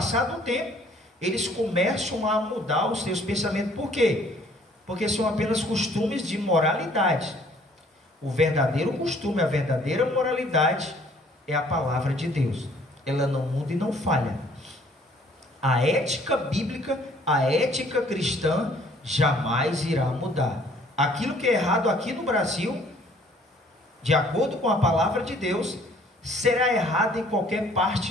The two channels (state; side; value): normal; both; correlation 0.59